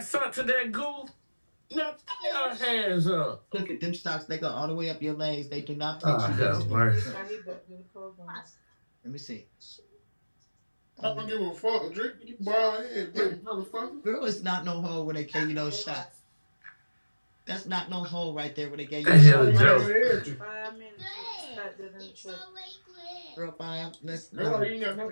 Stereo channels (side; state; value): both; inverted; correlation -1.00